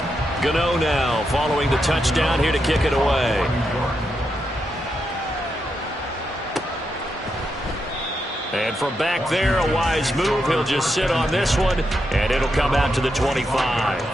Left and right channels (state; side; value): normal; both; correlation 0.84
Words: Gano now following the touchdown here to kick it away. And from back there, a wise move. He'll just sit on this one, and it'll come out to the 25.